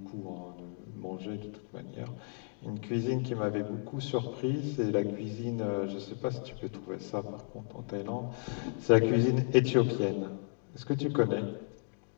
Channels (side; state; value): right; silent; 55 dB below the other